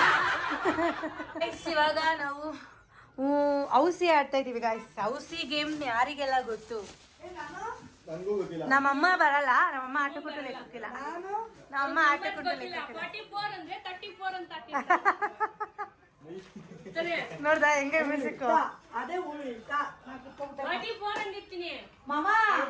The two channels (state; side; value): identical; both; correlation 1.00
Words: ಇವಾಗ ನಾವು ಔಸಿ ಆಡ್ತಾ ಇದೀವಿ ಗಾಯ್ಸ್. ಔಸಿ ಗೇಮ್ ಯಾರಿಗೆಲ್ಲ ಗೊತ್ತು? ನಮ್ಮಮ್ಮ ಬರಲ್ಲ, ನಮ್ಮಮ್ಮ ಆಟ ಕೊಟ್ಟು ಲೆಕ್ಕಕ್ಕಿಲ್ಲ. ನಮ್ಮಮ್ಮ ಆಟ ಕೊಟ್ಟು ಲೆಕ್ಕಕ್ಕಿಲ್ಲ. 44 ಅಂದ್ರೆ 34 ಅಂತ ನೋಡ್ದ ಹೆಂಗೆ ಮ್ಯೂಸಿಕ್. ಅದೇ 44 ಅಂದಿರ್ತೀನಿ. ಮಾಮಾ